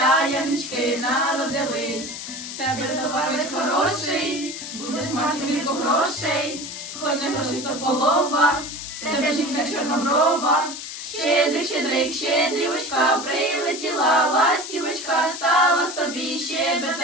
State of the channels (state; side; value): noise; left; hiss, 9 dB below the sound